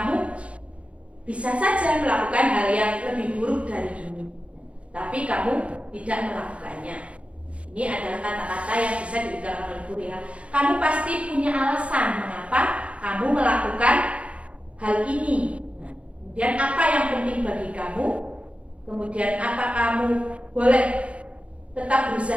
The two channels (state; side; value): late; left; 0.062 ms